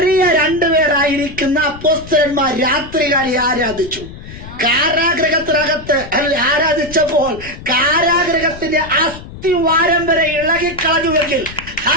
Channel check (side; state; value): left; noise; rumble, 15 dB below the sound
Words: 2 പേരായിരിക്കുന്ന അപ്പോസ്തലന്മാർ രാത്രികാലി ആരാധിച്ചു. കാരാഗ്രഹത്തിനകത്ത് ആരാധിച്ചപ്പോൾ കാരാഗ്രഹത്തിന്റെ അസ്ഥിവാരം വരെ ഇളകിക്കളഞ്ഞുവെങ്കിൽ